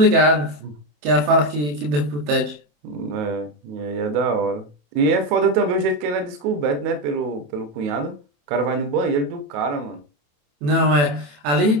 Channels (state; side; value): late; left; 27 ms